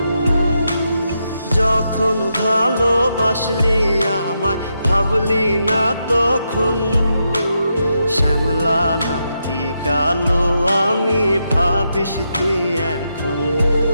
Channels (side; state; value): both; inverted; correlation -0.83